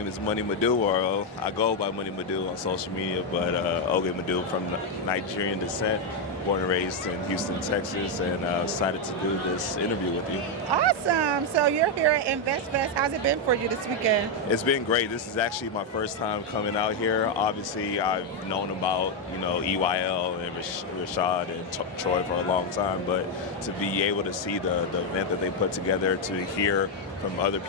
is Madu, or I go by Madu on social media, but Oge Madu from Nigerian descent, born and raised in Houston, Texas, and excited to do this interview with you. Awesome. So you're here at InvestFest. How's it been for you this weekend? It's been great. This is actually my first time coming out here. Obviously, I've known about, EYL and Rashad and Troy for a long time, but to be able to see the event that they put together, to hear from other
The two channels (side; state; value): both; normal; correlation 0.03